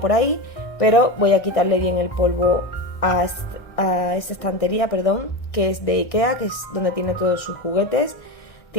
ahí, pero voy a quitarle bien el polvo a esta estantería, perdón, que es de Ikea, que es donde tiene todos sus juguetes.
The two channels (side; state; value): right; late; 1.6 ms